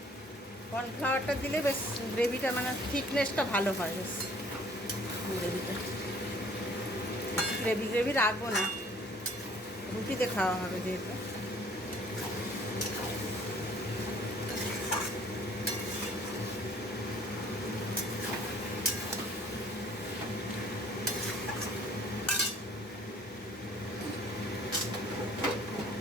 কর্নফ্লাওয়ারটা দিলে বেশ গ্রেভিটা, মানে থিকনেসটা ভালো হয়, বেশ গ্রেভিটা। গ্রেভি গ্রেভি রাখবো না, রুটিতে খাওয়া হবে যেহেতু।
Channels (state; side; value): normal; both; correlation 0.56